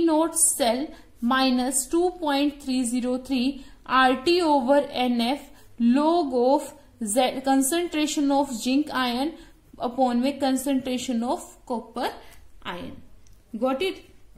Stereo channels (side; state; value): both; identical; correlation 1.00